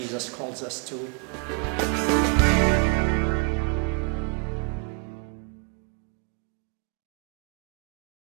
calls us to.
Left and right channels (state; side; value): quieter; left; 36.3 dB